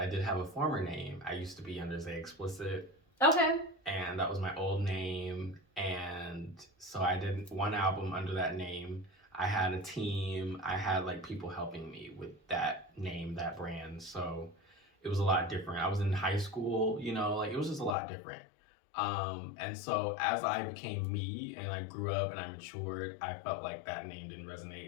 did have a former name. I used to be under Zaie Explicit, Okay. and that was my old name. And so I did one album under that name. I had a team. I had like people helping me with that name, that brand. So it was a lot different. I was in high school, you know, like it was just a lot different. And so as I became me and I grew up and I matured, I felt like that name didn't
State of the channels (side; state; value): right; drops out; at 17.9 s